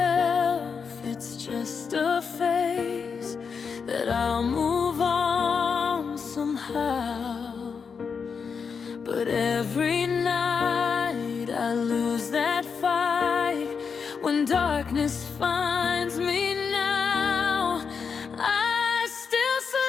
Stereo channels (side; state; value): right; quieter; 5.9 dB